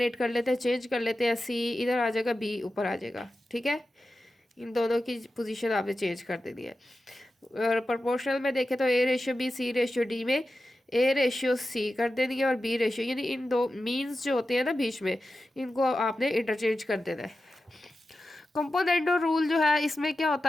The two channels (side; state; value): both; normal; correlation 0.92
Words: कर लेते हैं, चेंज कर लेते हैं, c इधर आ जाएगा, b ऊपर आ जाएगा, ठीक है। इन दोनों की पोजीशन आपने चेंज कर देनी है। और प्रोपोर्शनल में देखें तो a/b c/d में a/c कर देनी है और b/, यानी इन दो मीन्स जो होते हैं ना बीच में, इनको आपने इंटरचेंज कर देना है। कंपोनेंडो रूल जो है इसमें क्या